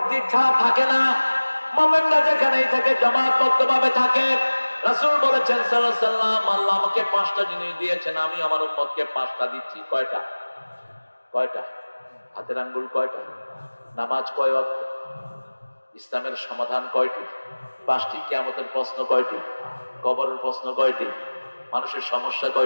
ছাড়া থাকে না, মুমিনরা যেখানেই থাকে জামাতবদ্ধভাবে থাকে। রাসূল বলেছেন সাল্লাল্লাহু আলাইহি ওয়াসাল্লাম, আল্লাহ আমাকে 5টা জিনিস দিয়েছেন, আমি আমার উম্মতকে 5টা দিচ্ছি। কয়টা? কয়টা? হাতের আঙ্গুল কয়টা? নামাজ কয় ওয়াক্ত? ইসলামের সমাধান কয়টি? 5টি। কিয়ামতের প্রশ্ন কয়টি? কবরের প্রশ্ন কয়টি? মানুষের সমস্যা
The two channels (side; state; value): both; inverted; correlation -1.00